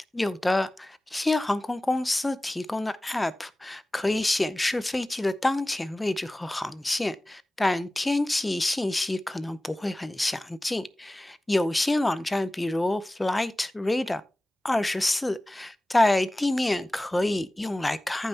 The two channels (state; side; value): normal; both; correlation 0.97